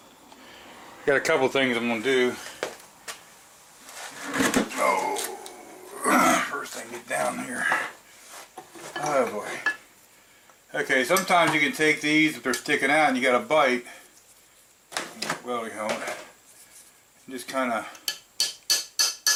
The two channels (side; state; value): both; identical; correlation 1.00